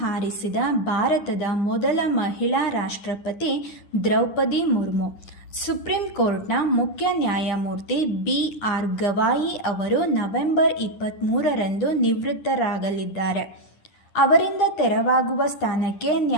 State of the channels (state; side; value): late; right; 10 ms